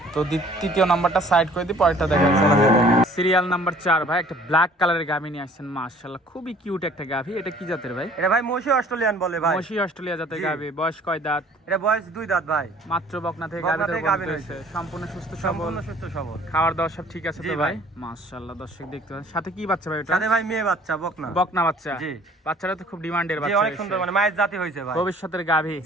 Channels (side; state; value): both; normal; correlation 0.54